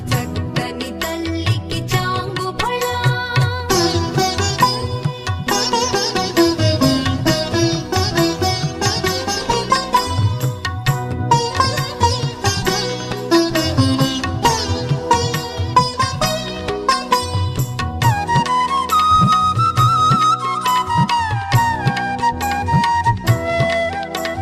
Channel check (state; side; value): identical; both; correlation 1.00